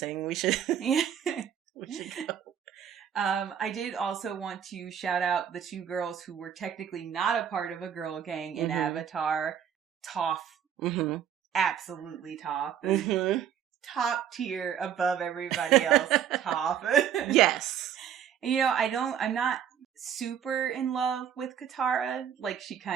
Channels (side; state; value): left; quieter; 9.0 dB